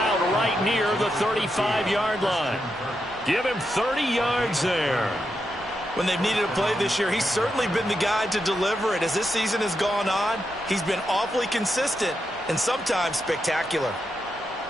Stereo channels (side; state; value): both; normal; correlation 0.85